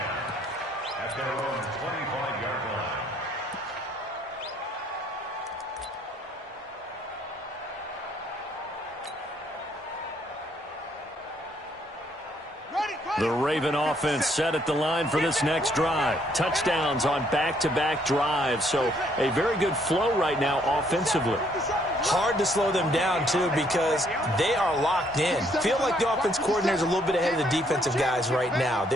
at their own 25-yard line. The Raven offense set at the line for this next drive. Touchdowns on back-to-back drives, so a very good flow right now offensively. Hard to slow them down, too, because they are locked in. Feel like the offense coordinator is a little bit ahead of the defensive guys right now.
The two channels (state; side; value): normal; both; correlation 0.68